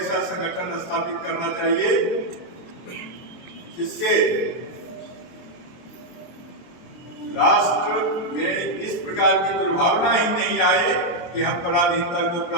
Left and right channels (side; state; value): right; late; 23 ms